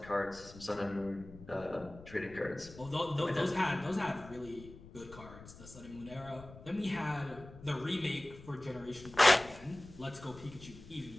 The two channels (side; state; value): left; noise; rumble, 17 dB below the sound